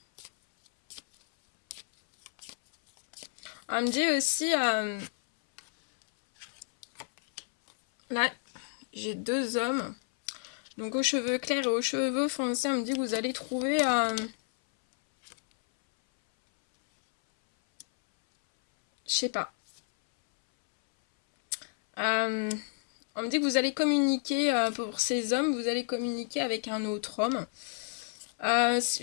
On me dit aussi, là, j'ai deux hommes. Donc aux cheveux clairs et aux cheveux foncés, on me dit que vous allez trouver... je sais pas. On me dit que vous allez communiquer, pour ces hommes, vous allez communiquer avec un autre homme.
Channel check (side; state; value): right; silent; 58 dB below the other